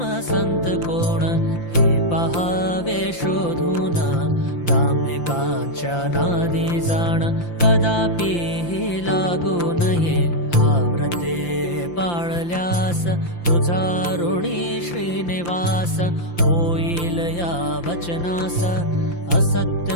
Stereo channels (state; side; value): late; right; 5.8 ms